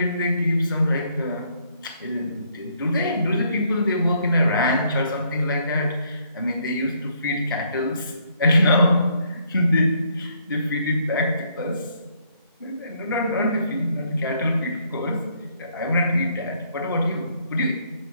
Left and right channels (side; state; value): both; inverted; correlation -0.69